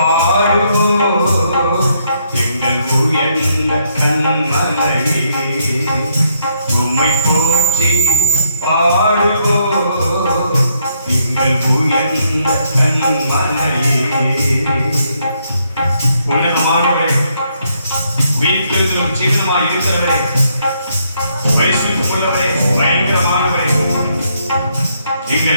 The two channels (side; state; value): both; inverted; correlation -0.75